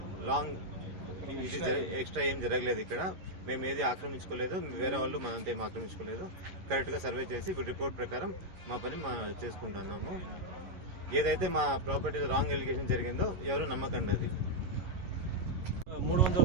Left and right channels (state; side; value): late; left; 11 ms